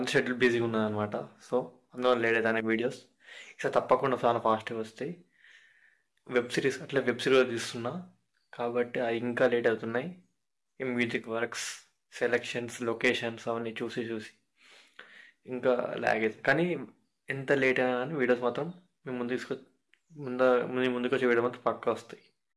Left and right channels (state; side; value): identical; both; correlation 1.00